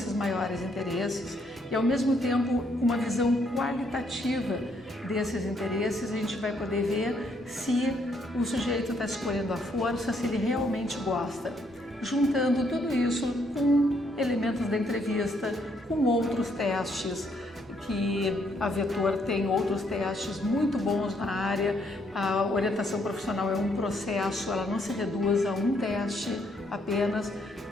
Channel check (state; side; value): normal; both; correlation 0.71